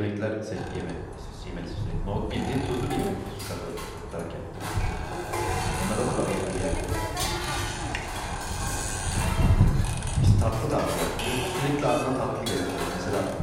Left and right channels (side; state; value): both; identical; correlation 1.00